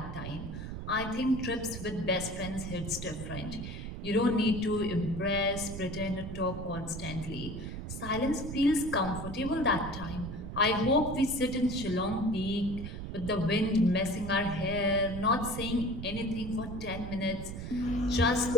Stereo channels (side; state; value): right; noise; rumble, 7 dB below the sound